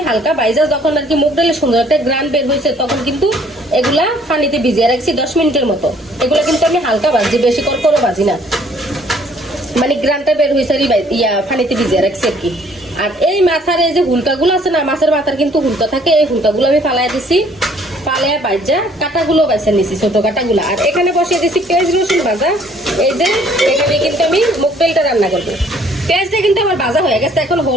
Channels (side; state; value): both; normal; correlation 0.60